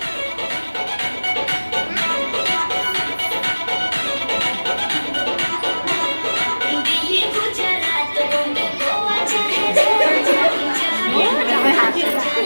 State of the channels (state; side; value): inverted; both; correlation -1.00